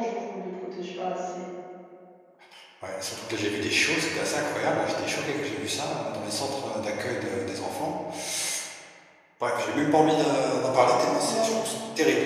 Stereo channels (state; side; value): identical; both; correlation 1.00